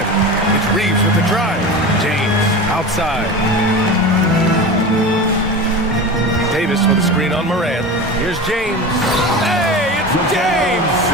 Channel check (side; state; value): both; normal; correlation 0.29